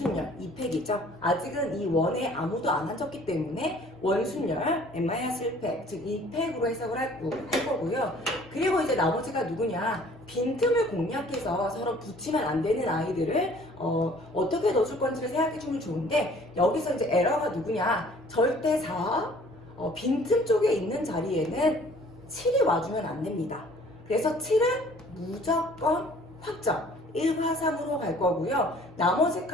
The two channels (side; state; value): both; normal; correlation 0.54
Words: 2팩이죠. 아직은 이 원에 아무도 안 앉았기 때문에 원순열 n-1팩, 즉 2팩으로 해석을 할 거고요. 그리고 이제 나머지가 누구냐? 빈틈을 공략해서 서로 붙이면 안 되는 아이들을 어떻게 넣어줄 건지를 생각해 주면 좋은데, 여기서 이제 에러가 누구냐? 절대 4, 빈틈 쪽에 있는 자리에는 7이 와주면 안 됩니다. 그래서 7은 무조건 확정. 1과 3으로 갈 거고요. 나머지